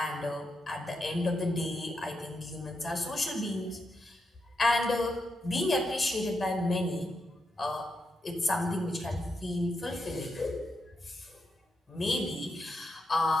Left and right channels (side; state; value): both; normal; correlation 0.84